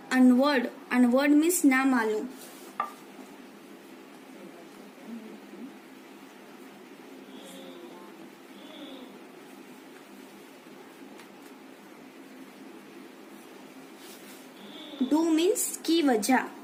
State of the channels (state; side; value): identical; both; correlation 1.00